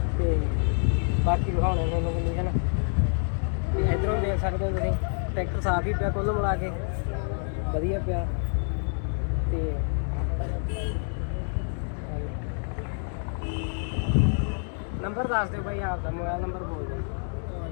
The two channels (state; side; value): silent; right; 60 dB below the other